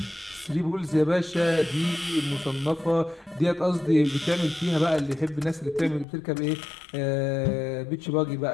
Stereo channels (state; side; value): drops out; right; at 6.1 s